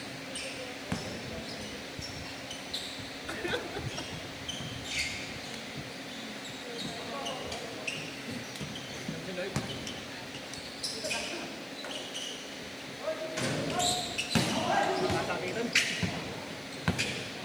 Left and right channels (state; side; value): noise; left; hiss, 23 dB below the sound